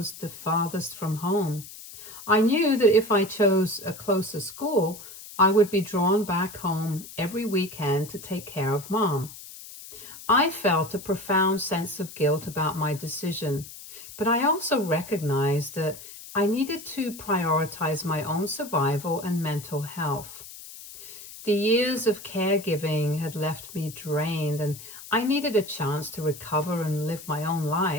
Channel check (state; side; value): noise; left; hiss, 15 dB below the sound